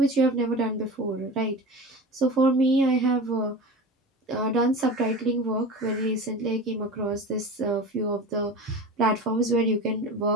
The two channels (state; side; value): normal; both; correlation 0.32